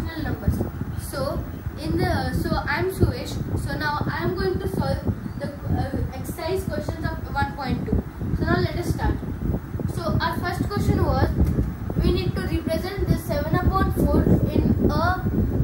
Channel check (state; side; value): identical; both; correlation 1.00